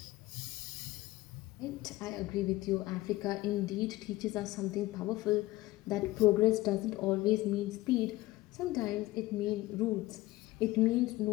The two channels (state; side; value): quieter; right; 18.5 dB